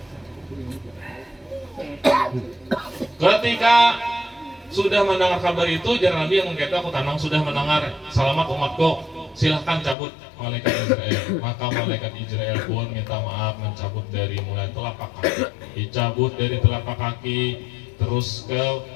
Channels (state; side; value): drops out; right; at 10.0 s